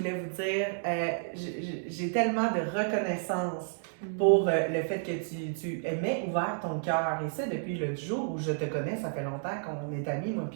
vous dire, j'ai tellement de reconnaissance pour le fait que tu aimais ouvert ton cœur. Et ça, depuis le jour où je te connais, ça fait longtemps qu'on est amis, moi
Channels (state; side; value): silent; left; digital silence